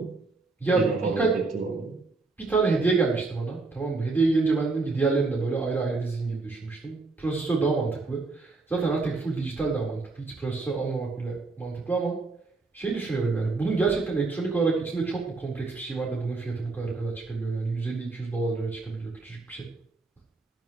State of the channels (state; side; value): quieter; left; 3.6 dB